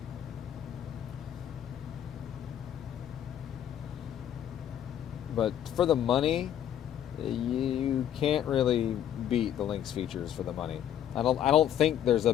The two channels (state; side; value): quieter; right; 10.3 dB